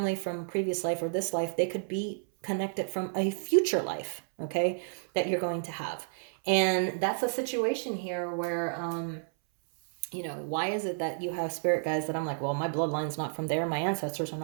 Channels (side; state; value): left; silent; 57 dB below the other